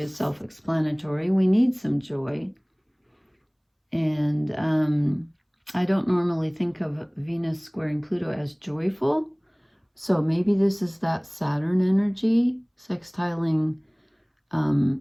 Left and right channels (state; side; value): identical; both; correlation 1.00